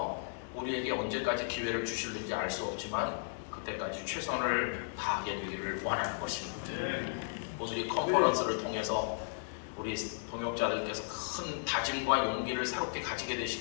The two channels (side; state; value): right; silent; digital silence